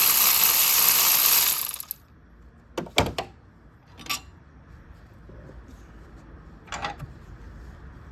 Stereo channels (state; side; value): identical; both; correlation 1.00